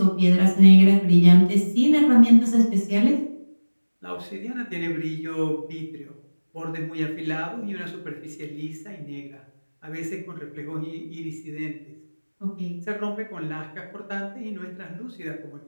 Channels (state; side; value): inverted; both; correlation -1.00